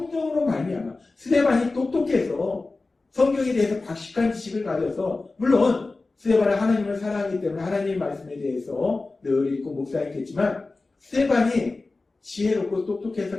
말미암아 스데반이 똑똑해서 성경에 대해서 박식한 지식을 가져서 물론 스데반은 하나님을 사랑하기 때문에 하나님의 말씀에 대해서 늘 읽고 묵상했겠지만 스데반이 지혜롭고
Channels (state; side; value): quieter; right; 3.5 dB